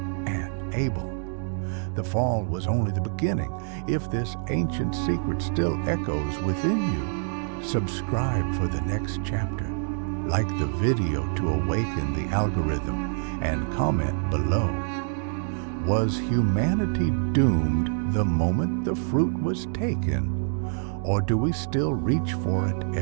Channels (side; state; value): left; silent; digital silence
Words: and Abel. The fall was only the beginning. If this ancient secret still echoes within you, subscribe for the next chapter. Like the video to awaken the algorithm, and comment below. Was humanity doomed the moment the fruit was taken? Or do we still reach for it